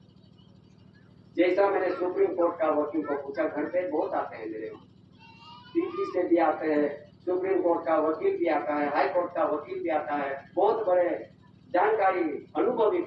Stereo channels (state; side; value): identical; both; correlation 1.00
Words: जैसा मैंने सुप्रीम कोर्ट का वकील को पूछा, घर पे बहुत आते हैं मेरे वहाँ, दिल्ली से भी आते हैं, सुप्रीम कोर्ट का वकील भी आता है, हाई कोर्ट का वकील भी आता है, बहुत बड़े जानकारी अनुभवी